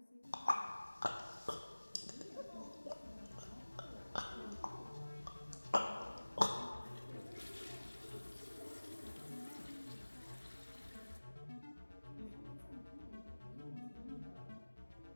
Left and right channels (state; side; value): inverted; both; correlation -1.00